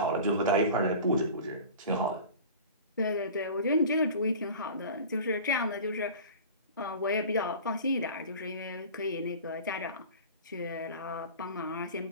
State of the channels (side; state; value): both; inverted; correlation -0.38